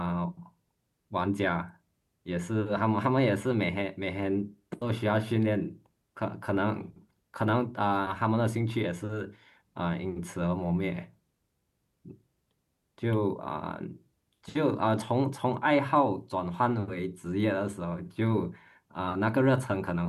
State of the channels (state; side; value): identical; both; correlation 1.00